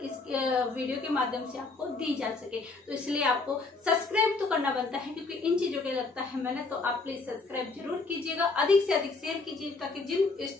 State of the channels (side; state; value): right; quieter; 3.8 dB